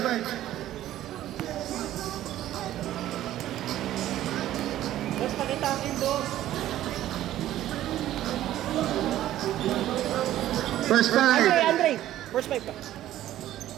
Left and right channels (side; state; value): left; quieter; 13.3 dB